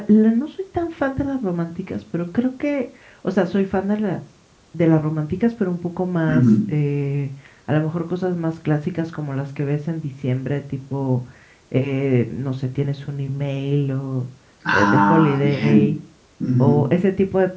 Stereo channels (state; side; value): identical; both; correlation 1.00